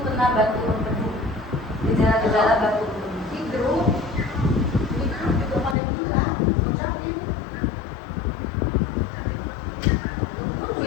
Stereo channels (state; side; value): drops out; right; at 5.8 s